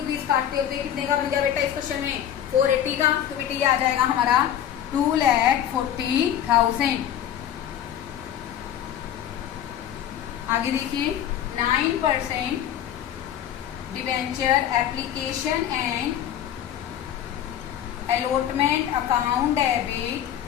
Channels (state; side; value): quieter; right; 10.5 dB